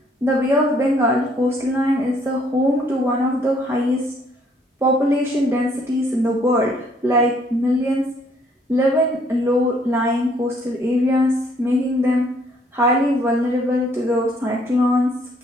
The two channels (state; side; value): normal; both; correlation 0.65